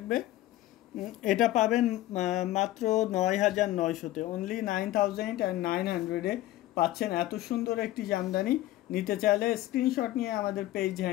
এটা পাবেন মাত্র 9900-তে, অনলি 9900 এ পাচ্ছেন এত সুন্দর একটি জামদানি। নিতে চাইলে স্ক্রিনশট নিয়ে আমাদের পেজ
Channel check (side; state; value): right; quieter; 15.3 dB